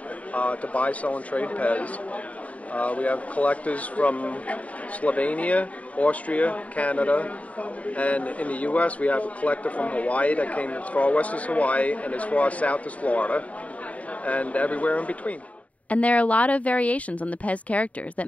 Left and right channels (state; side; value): late; right; 0.068 ms